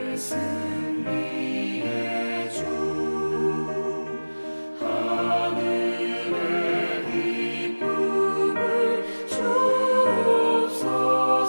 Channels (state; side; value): inverted; both; correlation -1.00